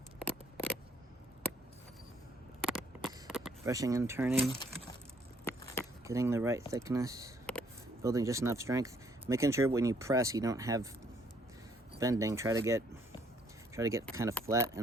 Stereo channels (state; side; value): normal; both; correlation 0.66